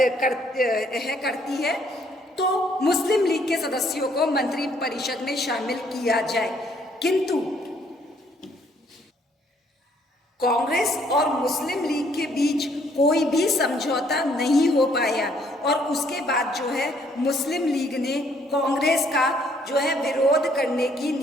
करती है, तो मुस्लिम लीग के सदस्यों को मंत्री परिषद में शामिल किया जाए। किंतु कांग्रेस और मुस्लिम लीग के बीच कोई भी समझौता नहीं हो पाया और उसके बाद जो है मुस्लिम लीग ने कांग्रेस का जो है विरोध करने की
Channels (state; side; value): normal; both; correlation 0.65